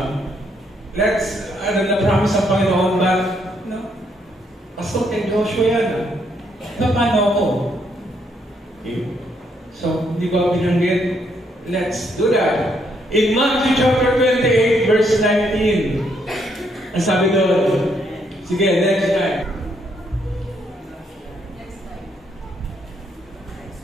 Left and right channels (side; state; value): both; normal; correlation 0.73